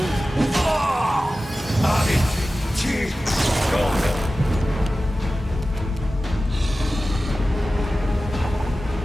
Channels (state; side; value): normal; both; correlation 0.95